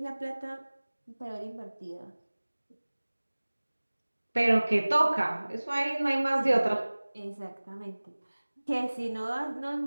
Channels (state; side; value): inverted; both; correlation -1.00